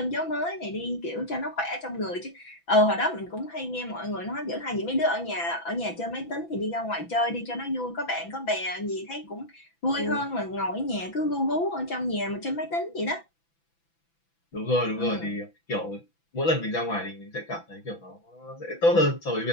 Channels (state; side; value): late; right; 6.0 ms